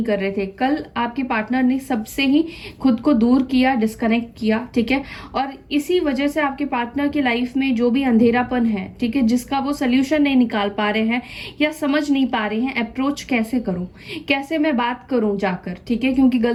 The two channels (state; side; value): identical; both; correlation 1.00